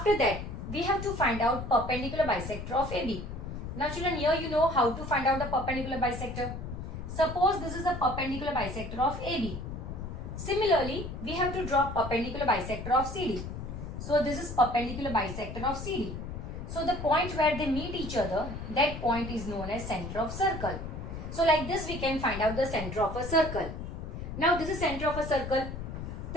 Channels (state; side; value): noise; left; rumble, 7 dB below the sound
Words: that, we have to find out perpendicular bisector of AB. Now children, here you know how to find out the perpendicular bisector. Suppose this is a perpendicular bisector of AB. Similarly, we have to draw perpendicular bisector of CD. So this is perpendicular bisector of CD. So the point where they meet each other, that point is known as center of circle. So like this we can find out the center of a circle. Now this is center of a circle.